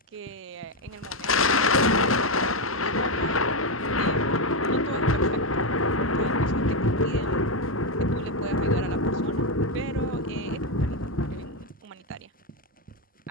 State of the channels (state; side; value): normal; both; correlation 0.07